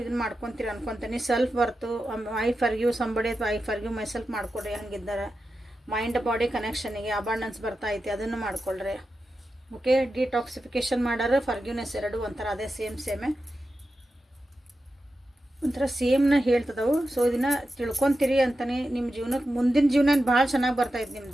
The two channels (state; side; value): normal; both; correlation 0.90